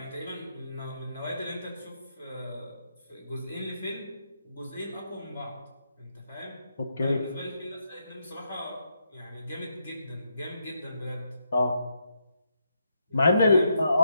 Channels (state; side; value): inverted; both; correlation -0.81